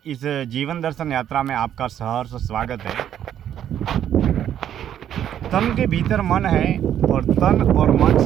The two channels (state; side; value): quieter; left; 10.3 dB